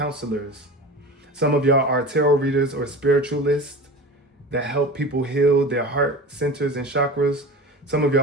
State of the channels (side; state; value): both; normal; correlation 0.33